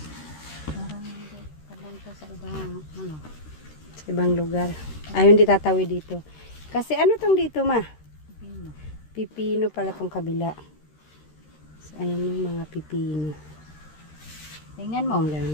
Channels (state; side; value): late; right; 13 ms